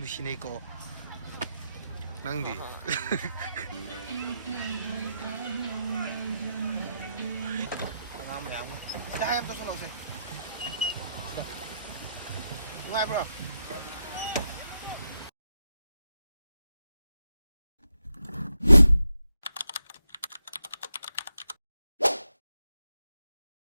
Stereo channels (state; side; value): inverted; both; correlation -0.83